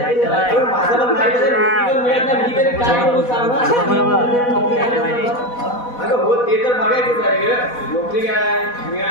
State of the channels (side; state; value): right; late; 4.1 ms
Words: हो ते तर बघायचंच आहे नोकरी काय